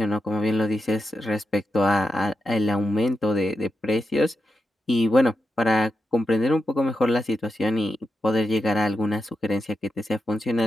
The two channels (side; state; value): both; normal; correlation 0.87